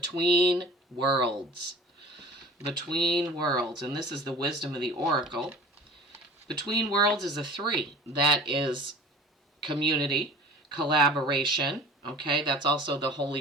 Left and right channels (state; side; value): normal; both; correlation 0.43